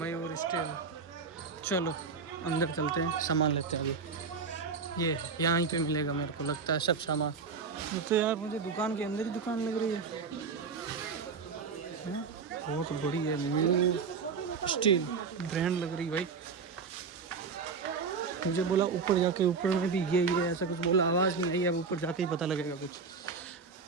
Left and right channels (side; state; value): left; quieter; 5.2 dB